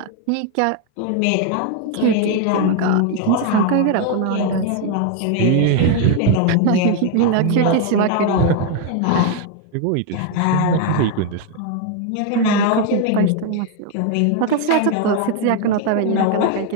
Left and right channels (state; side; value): different; both; correlation 0.01